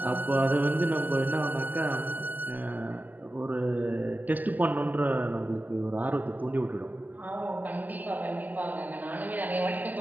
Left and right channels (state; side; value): late; left; 0.082 ms